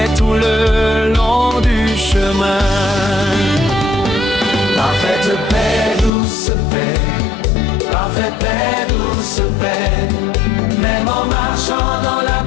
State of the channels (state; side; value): drops out; right; at 6.1 s